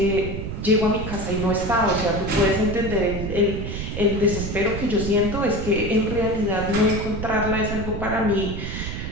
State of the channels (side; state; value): right; noise; rumble, 5 dB below the sound